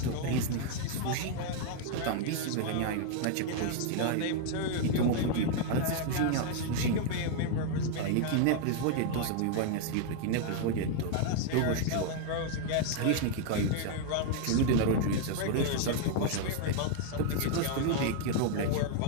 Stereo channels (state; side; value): different; both; correlation 0.00